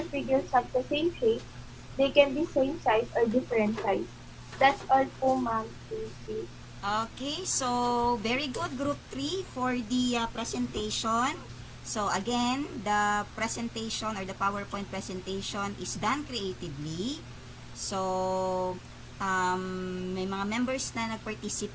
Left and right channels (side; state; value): both; identical; correlation 1.00